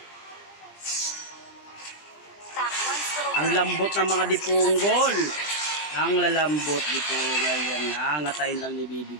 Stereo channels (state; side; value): late; right; 20 ms